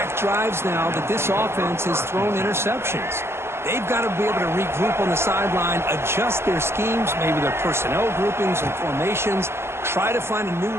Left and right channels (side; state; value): left; late; 0.12 ms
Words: drives now that this offense has thrown interceptions. They've got to be able to regroup on the sideline, adjust their schemes, maybe their personnel groupings and formations, try to find a new